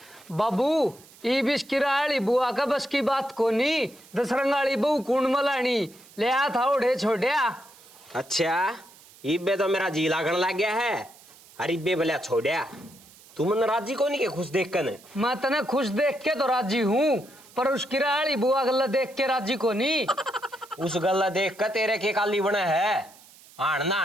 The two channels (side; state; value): right; noise; hiss, 24 dB below the sound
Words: बाबू ई बिस्किराली बुआ का बस की बात कोनी। दसरंगाली बहू कुंड मलानी ले आ था उड़े छोड़िया। अच्छा इब्बे तो मेरा जी लागण लग गया है। अरे इब्बे भले छोड़िया तू मन राजी को नहीं के खुश देख कर। मैं तने खुश देख के तो राजी हूँ, पर उस किराली बुआ गल्ला देख के राजी को नहीं। उस गल्ला देख कर तेरे के काली बना है। आन